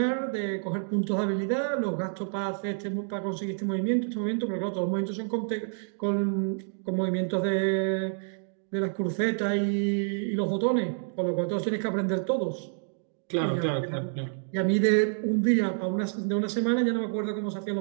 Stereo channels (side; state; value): left; silent; digital silence